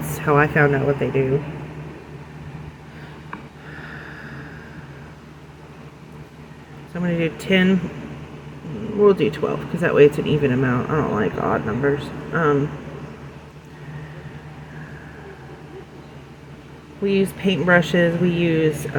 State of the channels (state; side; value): identical; both; correlation 1.00